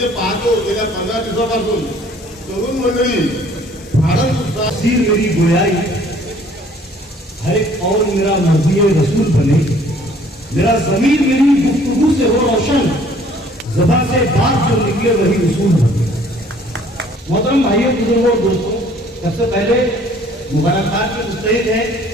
पाहतो गेल्या 15 दिवसापासून तरुण मंडळी फारच उत्साह. सीर मेरी गोयाई हर एक और मेरा मर्जी रसूल बने, मेरा जमीर मेरी गुफ्तगू से हो रोशन, ज़बान से बात जो निकले वही उसूल बने. मोहतरम भाइयों बुजुर्गों और दोस्तों, सबसे पहले मुबारकबाद की मुस्तहिक है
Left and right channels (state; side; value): normal; both; correlation 0.57